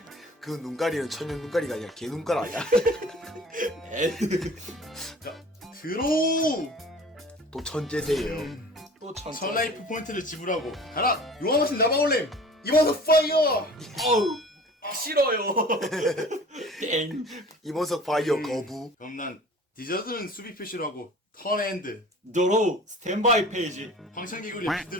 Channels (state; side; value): normal; both; correlation 0.44